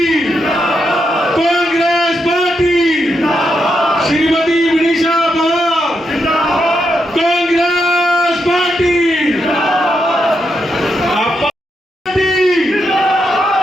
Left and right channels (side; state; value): both; normal; correlation 0.82